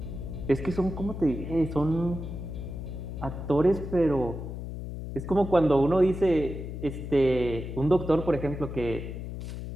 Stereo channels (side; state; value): left; noise; hum, 7 dB below the sound